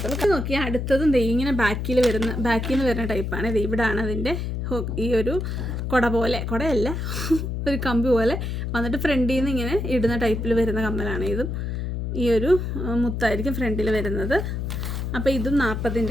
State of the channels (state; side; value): noise; left; hum, 3 dB below the sound